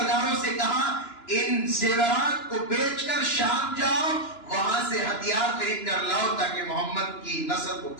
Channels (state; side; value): late; right; 2.9 ms